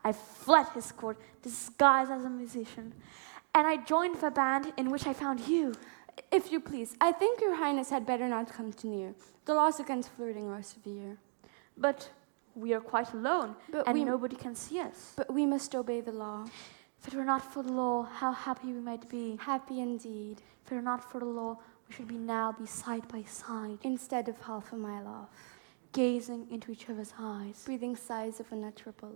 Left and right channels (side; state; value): left; silent; 54 dB below the other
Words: I fled his court, disguised as a musician, and I joined the band in which I found you. If you please, I think your highness had better not come too near. The laws against flirting are severe. But we are quite alone, and nobody can see us. But we must obey the law. If it were not for the law, how happy we might be. Happy indeed. If it were not for the law, we should now be side by side. Instead of half a mile off. Gazing into each other's eyes. Breathing sighs of unutterable